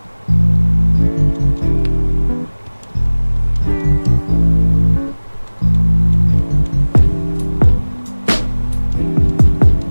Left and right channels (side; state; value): both; inverted; correlation -1.00